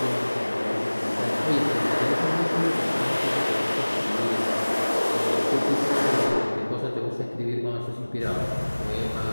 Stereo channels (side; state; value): both; inverted; correlation -1.00